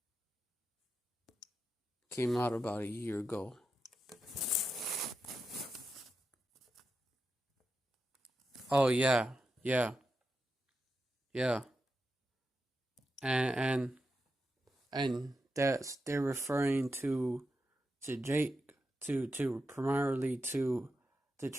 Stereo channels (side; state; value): both; normal; correlation 0.88